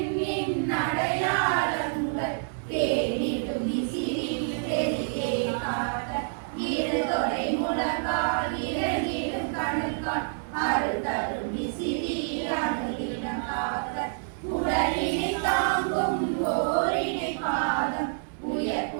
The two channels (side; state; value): left; silent; digital silence